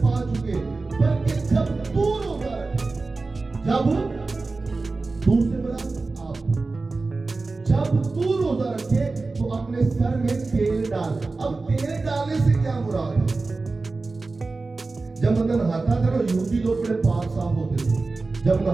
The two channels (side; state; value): left; quieter; 3.7 dB